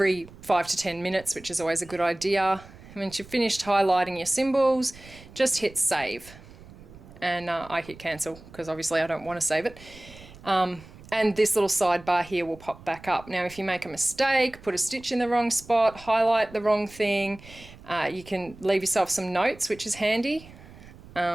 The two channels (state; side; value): noise; right; rumble, 20 dB below the sound